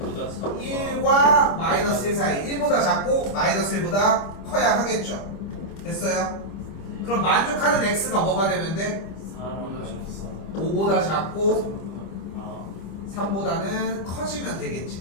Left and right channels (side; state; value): right; late; 25 ms